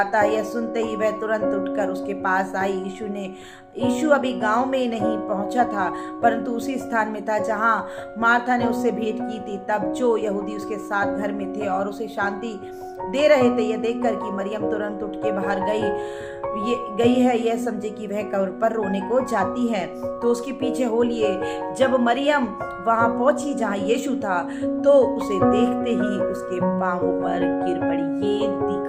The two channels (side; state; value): both; identical; correlation 1.00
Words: है। यह सुनते ही वह तुरंत उठकर उसके पास आई। यीशु अभी गांव में नहीं पहुंचा था, परंतु उसी स्थान में था जहां मार्था ने उससे भेंट की थी। तब जो यहूदी उसके साथ घर में थे और उसे शांति दे रहे थे, यह देखकर कि मरियम तुरंत उठ के बाहर गई है, यह समझे कि वह कब्र पर रोने को जाती है, तो उसके पीछे हो लिए। जब मरियम वहां पहुंची जहां यीशु था तो उसे देखते ही उसके पांवों पर गिर पड़ी। ये